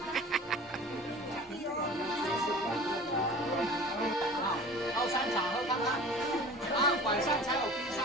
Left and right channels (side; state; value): both; normal; correlation 0.41